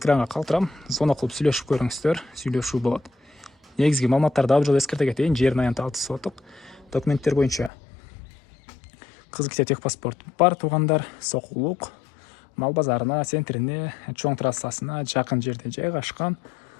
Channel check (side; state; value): right; drops out; at 7.7 s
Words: калтырам. Звонок кылып сүйлөшүп көрүңүздөр. Сүйлөшүү болот. Негизги маалыматтарды дагы жолу эскерте кетейин. Жердин аянты 6 соток. Документтер боюнча Кызылкия техпаспорт бар туугандар. Сокулук мал базарына, центрине, чоң трассасына жакын жерде жайгашкан.